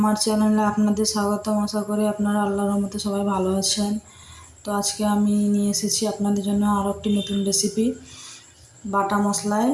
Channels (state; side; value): identical; both; correlation 1.00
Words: চ্যানেলে আপনাদের স্বাগতম। আশা করি আপনারা আল্লাহর রহমতে সবাই ভালো আছেন। তো আজকে আমি নিয়ে এসেছি আপনাদের জন্য আরও একটি নতুন রেসিপি, বাটা মশলায়